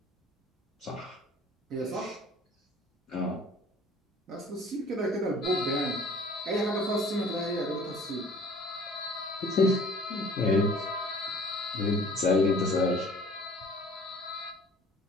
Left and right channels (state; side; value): normal; both; correlation 0.49